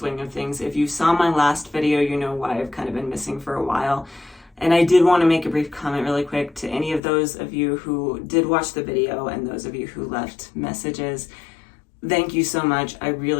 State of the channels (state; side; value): drops out; right; at 7.0 s